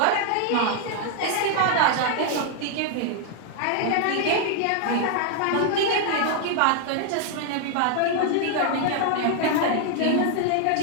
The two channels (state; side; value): different; both; correlation 0.00